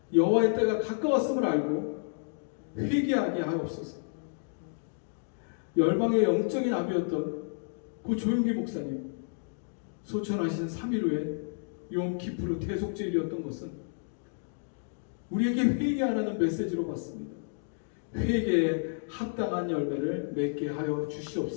여호와의 때가 가까웠음을 알고 회개하게 하옵소서. 열방의 영적인 아비였던 고 조용기 목사님 소천하신 3일 후에 욤키프르 대속제일이었던 것은 우리에게 회개하라는 메시지로 봤습니다. 회개에 합당한 열매를 맺게 하여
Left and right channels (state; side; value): silent; right; digital silence